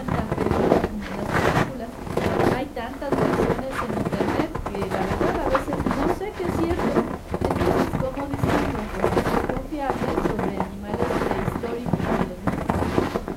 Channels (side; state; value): both; identical; correlation 1.00